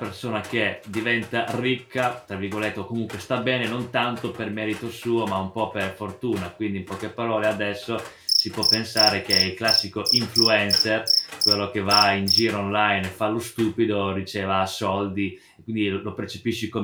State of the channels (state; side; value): identical; both; correlation 1.00